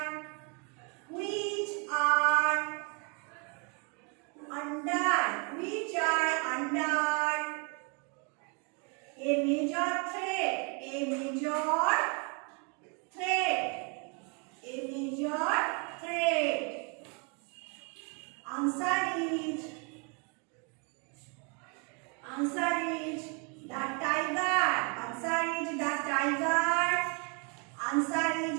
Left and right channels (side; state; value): left; quieter; 35.1 dB